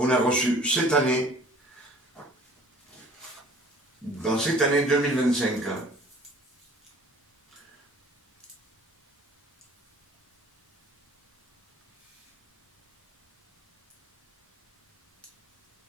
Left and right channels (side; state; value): both; normal; correlation 0.52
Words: a reçues cette année, dans cette année 2025.